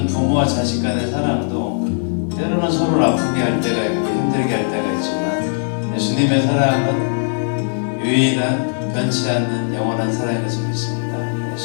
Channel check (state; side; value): silent; right; digital silence